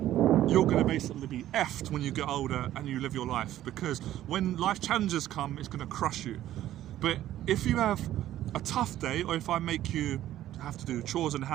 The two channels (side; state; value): left; quieter; 13.0 dB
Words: you're going to basically be effed when you get older and you live your life, because when life challenges come, it's going to crush you. But if you have a tough day, or if I make you have to do chores in the